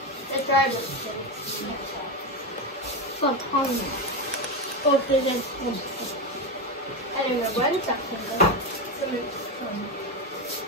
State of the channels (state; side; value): normal; both; correlation 0.13